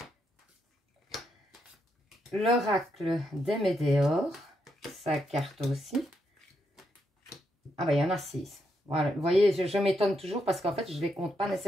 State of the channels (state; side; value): normal; both; correlation 0.80